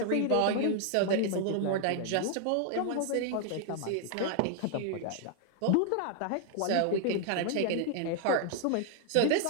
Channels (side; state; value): both; different; correlation 0.00